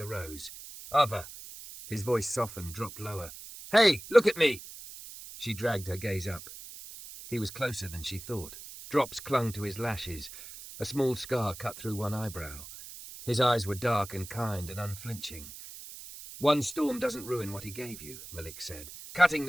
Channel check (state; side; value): noise; right; hiss, 14 dB below the sound